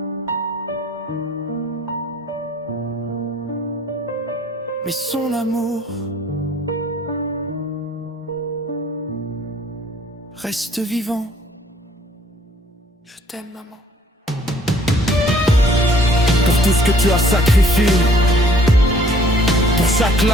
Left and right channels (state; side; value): normal; both; correlation 0.58